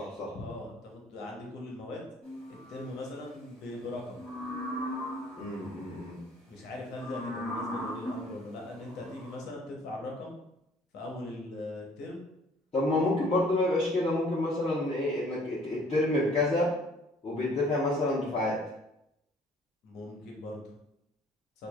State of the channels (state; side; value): normal; both; correlation 0.56